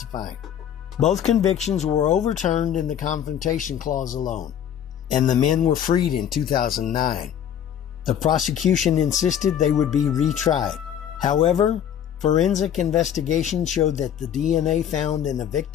Both convictions were overturned in the confrontation clause alone, and the men were freed in 2009. The prosecution insisted they would be retried. However, forensic investigation showed that the DNA found in the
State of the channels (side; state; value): right; quieter; 9.5 dB